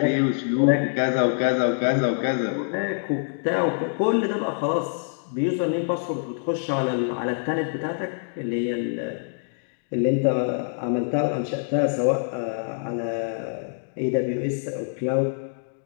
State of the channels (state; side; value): silent; right; digital silence